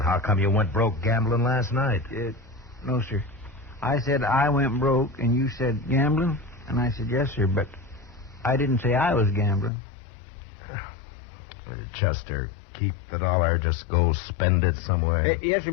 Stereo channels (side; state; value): right; drops out; at 9.7 s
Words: how come you went broke gambling last night? No, sir. I said I went broke, and you said gambling, and I said yes, sir, but I didn't say I was gambling. Chester, keep the dollar. Just go spend it somewhere. Yes, sir,